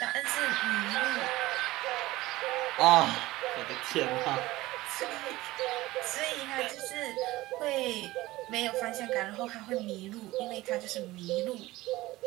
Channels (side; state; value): left; quieter; 18.3 dB